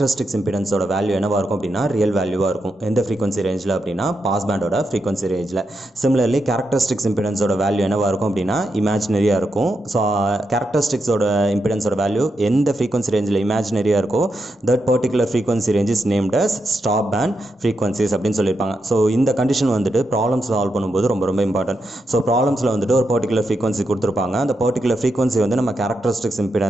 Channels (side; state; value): both; normal; correlation 0.84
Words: இம்பிடன்ஸோட வேல்யூ என்னவாக இருக்கும் அப்படின்னா ரியல் வேல்யூவாக இருக்கும். எந்த ஃப்ரீக்வன்சி ரேஞ்சில் அப்படின்னா பாஸ் பேண்டோட ஃப்ரீக்வன்சி ரேஞ்சில். சிமிலர்லி கேரக்டரிஸ்டிக்ஸ் இம்பிடன்ஸோட வேல்யூ என்னவாக இருக்கும் அப்படின்னா இமேஜினரியாக இருக்கும். ஸோ கேரக்டரிஸ்டிக்ஸோட இம்பிடன்ஸோட வேல்யூ எந்த ஃப்ரீக்வன்சி ரேஞ்சில் இமேஜினரியாக இருக்கோ that particular frequency range is named as stop band frequencies அப்படின்னு சொல்லியிருப்பாங்க. ஸோ இந்த கண்டிஷன் வந்துட்டு ப்ராப்ளம்ஸ் சால்வ் பண்ணும்போது ரொம்ப ரொம்ப இம்பார்ட்டன்ட். ஸோ ப்ராப்ளம்ஸில் வந்துட்டு ஒரு பர்டிகுலர் ஃப்ரீக்வன்சி கொடுத்துருப்பாங்க. அந்த பர்டிகுலர் ஃப்ரீக்வன்சி வந்து நம்ம கேரக்டரிஸ்டிக்ஸ்